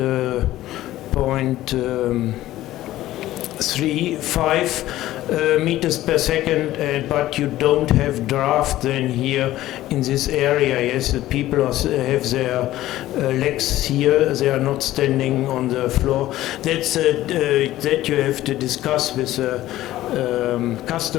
3.5 meters per second, but you don't have draft then here in this area. Yes, the people have their legs here, they are not standing on the floor. That's that you have to discuss with the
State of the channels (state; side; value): quieter; right; 15.0 dB